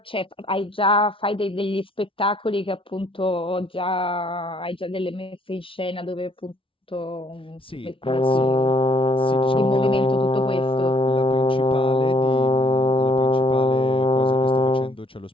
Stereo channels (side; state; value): right; late; 0.25 ms